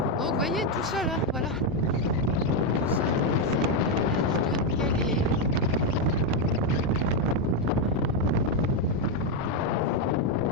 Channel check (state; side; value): normal; both; correlation 0.04